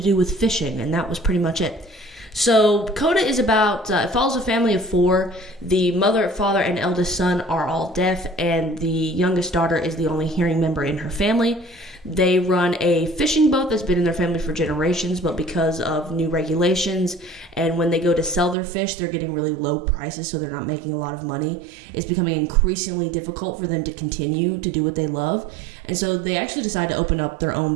do with fishing, and that was pretty much it. So CODA is about, it follows a family of four. The mother, father, and eldest son are all deaf, and the youngest daughter is the only hearing member in her family. They run a fishing boat that's been in their family for generations, but because of new regulations and when they go to sell their fish, they're getting really low prices, so they're not making a lot of money. It's becoming increasingly difficult for them to continue to do what they love. And so they actually decide to open up their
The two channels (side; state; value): left; drops out; at 18.6 s